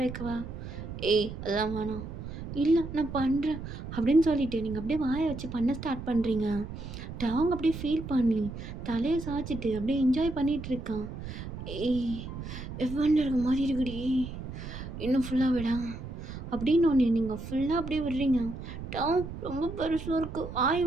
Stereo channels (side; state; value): right; noise; rumble, 9 dB below the sound